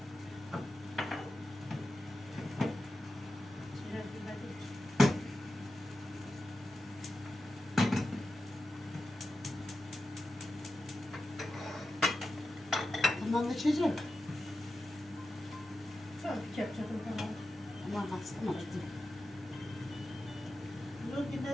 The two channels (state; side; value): normal; both; correlation 0.91